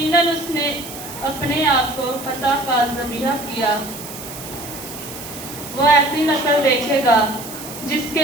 اس نے اپنے آپ کو فتح کا ذبیحہ کیا۔ وہ ایسی نسل دیکھے گا جس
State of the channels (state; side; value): noise; right; hiss, 12 dB below the sound